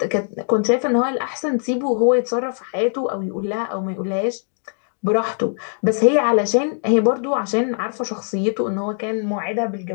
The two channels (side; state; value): right; silent; 57 dB below the other